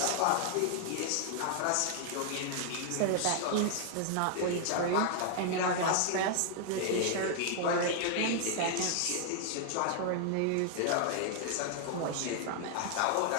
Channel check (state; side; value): different; both; correlation 0.00